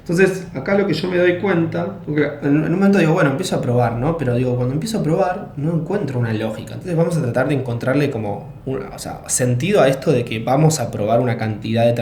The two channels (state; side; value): identical; both; correlation 1.00